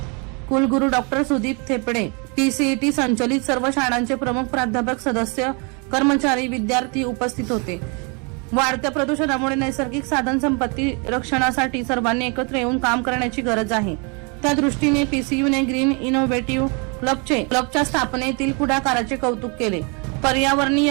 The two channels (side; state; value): left; quieter; 33.6 dB